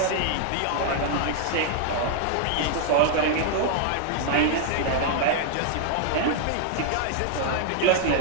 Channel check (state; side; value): different; both; correlation 0.00